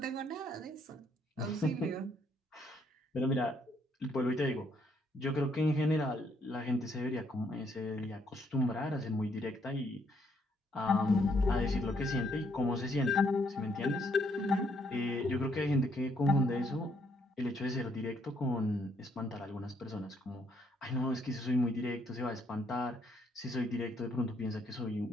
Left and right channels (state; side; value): normal; both; correlation 0.71